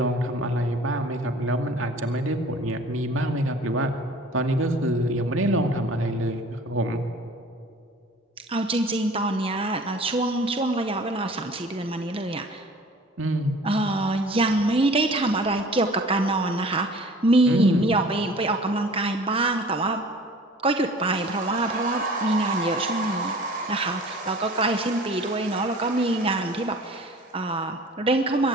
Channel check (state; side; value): normal; both; correlation 0.46